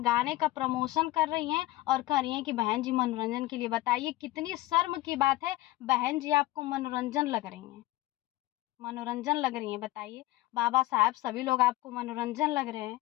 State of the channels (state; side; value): quieter; right; 17.6 dB